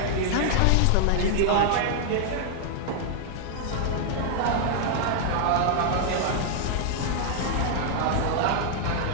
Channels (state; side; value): different; both; correlation -0.01